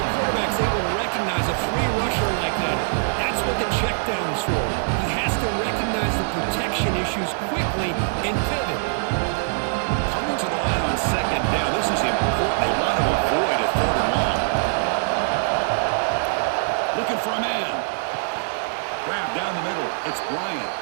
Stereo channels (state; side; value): silent; left; 63 dB below the other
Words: a quarterback's able to recognize a free rusher like that, that's what the check down is for. He has to recognize the protection issues quickly and pivot. Coming to the line on second down, this is important. They want to avoid a 3rd and long. Looking for a man. Grab down the middle. It's Bryant.